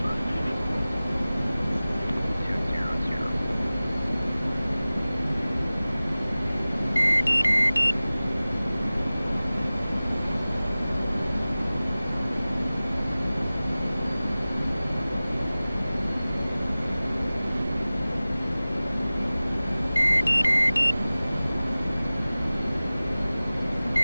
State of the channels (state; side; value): inverted; both; correlation -0.98